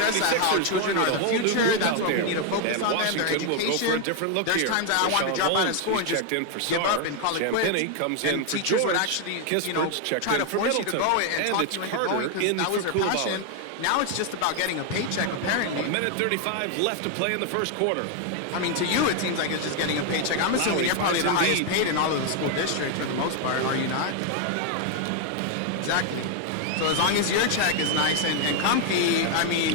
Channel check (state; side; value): different; both; correlation 0.01